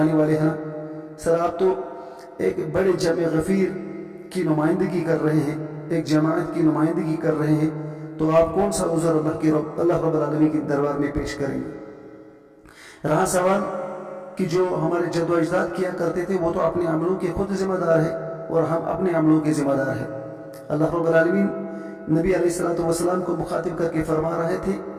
والے ہیں نا۔ سر آپ تو ایک بڑے جمع غفیر کی نمائندگی کر رہے ہیں، ایک جماعت کی نمائندگی کر رہے ہیں، تو آپ کون سا عذر اللہ رب العالمین کے دربار میں پیش کریں گے؟ رہا سوال کہ جو ہمارے جد و اجداد کیا کرتے تھے وہ تو اپنے عملوں کے خود ذمہ دار ہے اور ہم اپنے عملوں کے ذمہ دار ہیں۔ اللہ رب العالمین نبی علیہ السلام کو مخاطب کر کے فرما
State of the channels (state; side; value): identical; both; correlation 1.00